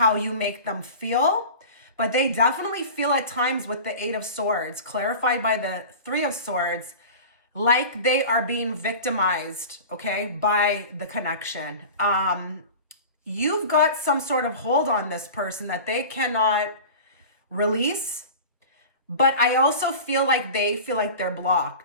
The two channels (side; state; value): both; inverted; correlation -0.35